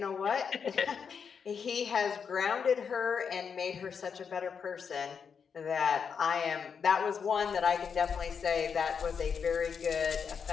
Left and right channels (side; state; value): right; quieter; 6.5 dB